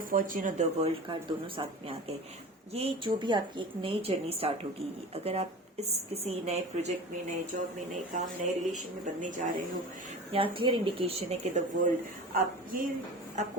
फॉर्च्यून और द वर्ल्ड कार्ड दोनों साथ में आ गए। ये जो भी आपकी एक नई जर्नी स्टार्ट होगी, अगर आप इस किसी नए प्रोजेक्ट में, नए जॉब में, नए काम, नए रिलेशन में बनने जा रहे हो, यहाँ क्लियर इंडिकेशन है कि द वर्ल्ड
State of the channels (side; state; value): both; normal; correlation 0.34